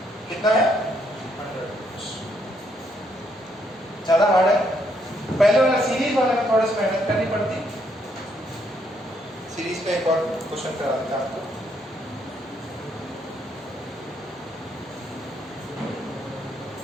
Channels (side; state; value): both; normal; correlation 0.73